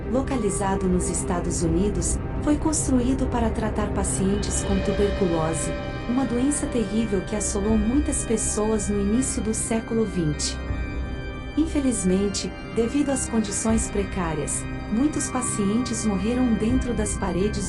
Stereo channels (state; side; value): identical; both; correlation 1.00